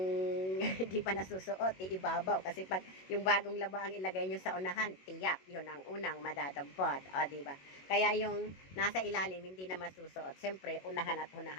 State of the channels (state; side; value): late; right; 21 ms